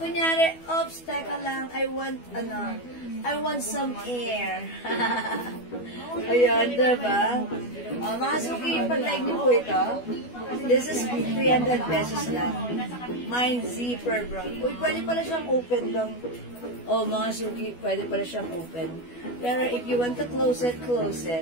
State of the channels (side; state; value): right; late; 12 ms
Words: Kunyari, oops, teka lang, I want some air. Ayan, diba? Mga suki, pag-like niyo po ito, this is 300 pesos lang. Mine zipper brown. Uy, pwede pala siyang open lang. Mga suki, pwede pala siyang open. Pero if you want to close it, close